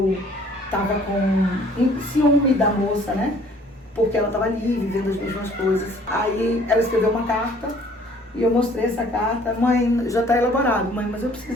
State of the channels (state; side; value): normal; both; correlation 0.56